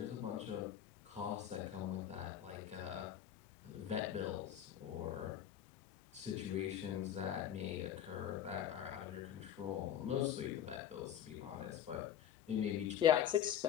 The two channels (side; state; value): right; quieter; 10.0 dB